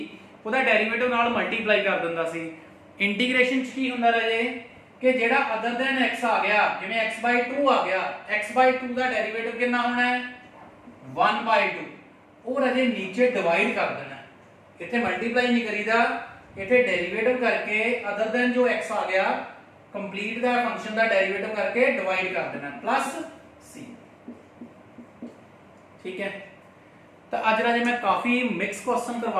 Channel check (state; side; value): identical; both; correlation 1.00